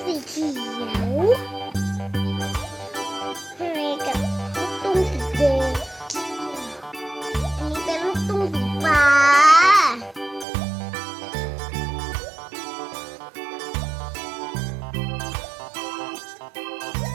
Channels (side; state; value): left; drops out; at 10.5 s